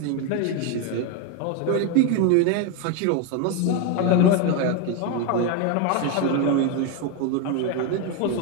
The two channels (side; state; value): both; different; correlation 0.02